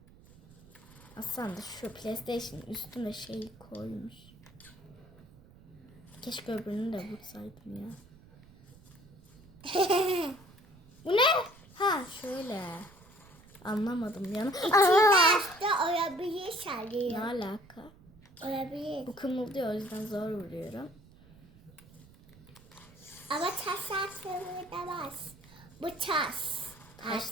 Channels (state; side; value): noise; right; rumble, 24 dB below the sound